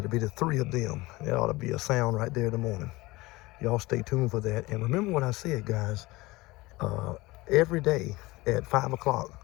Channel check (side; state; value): right; quieter; 20.9 dB